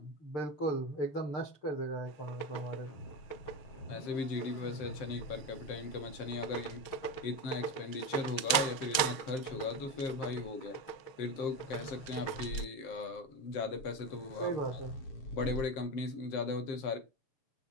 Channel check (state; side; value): late; right; 6.4 ms